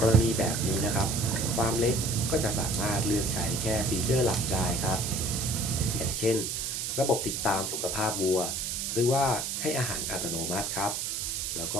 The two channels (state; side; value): noise; right; hiss, 2 dB below the sound